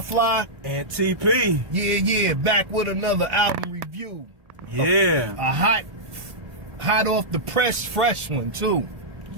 Fly. And TP. Yeah. Back with another album review. Yeah. A hot off the press, fresh one too.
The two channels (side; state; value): left; late; 1.4 ms